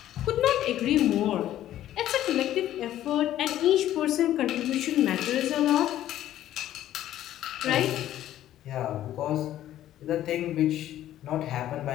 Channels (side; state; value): right; quieter; 12.7 dB